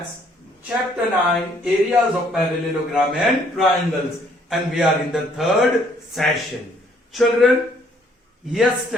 Chapter 9, Areas of Parallelogram and Triangles, and we are in the third session. Children,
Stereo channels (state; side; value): normal; both; correlation 0.64